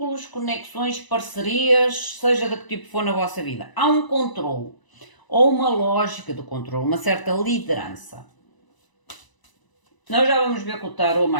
conexões, parcerias, seja de que tipo for na vossa vida. Há um controle, ou uma lógica de controle, uma certa liderança. Nós já vamos ver com o tarot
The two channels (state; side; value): late; right; 1.0 ms